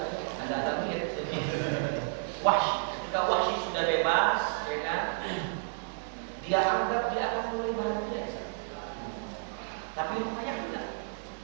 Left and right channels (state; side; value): silent; left; 57 dB below the other